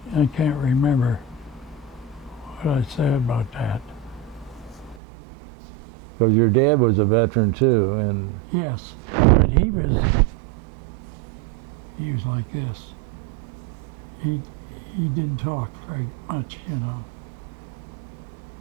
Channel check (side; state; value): left; drops out; at 5.0 s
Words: I can't remember what I said about that. Because your dad was a veteran too, and Yes, but he was like this. He didn't talk very much, you know,